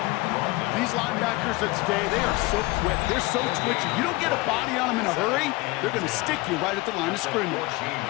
These linebackers of today, they are so quick. They're so twitchy. You don't get a body on them in a hurry, they're going to stick you right at the line of scrimmage.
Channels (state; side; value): quieter; right; 22.2 dB